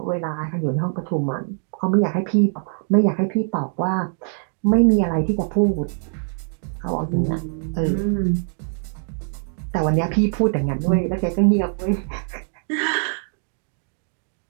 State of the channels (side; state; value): left; silent; 58 dB below the other